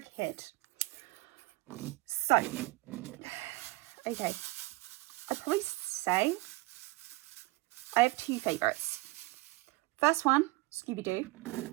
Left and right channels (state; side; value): quieter; left; 21.8 dB